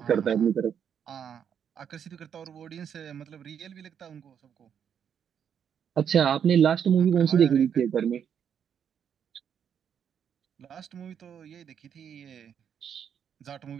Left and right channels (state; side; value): quieter; left; 8.2 dB